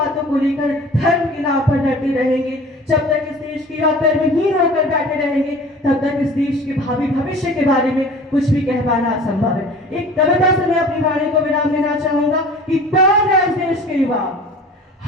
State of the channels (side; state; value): both; normal; correlation 0.43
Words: को लेकर धर्म के नाम पर लड़ते रहेंगे, जब तक इस देश के युवा कर्महीन होकर बैठे रहेंगे, तब तक इस देश के भावी भविष्य के बारे में कुछ भी कह पाना असंभव है। एक कविता से मैं अपनी वाणी को विराम देना चाहूंगा कि कौन है इस देश के युवा,